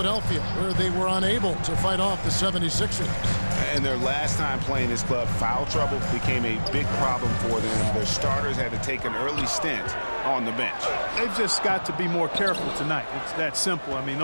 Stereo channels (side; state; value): both; inverted; correlation -1.00